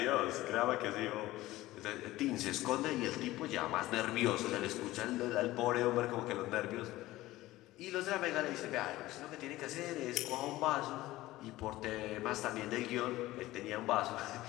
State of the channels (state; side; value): quieter; right; 17.2 dB